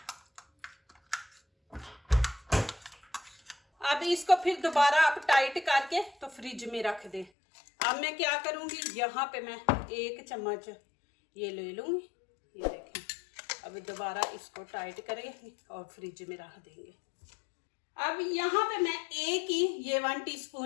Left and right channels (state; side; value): drops out; right; at 7.3 s